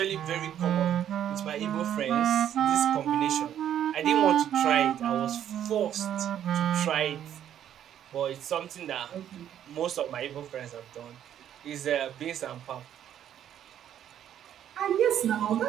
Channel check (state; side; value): quieter; left; 10.3 dB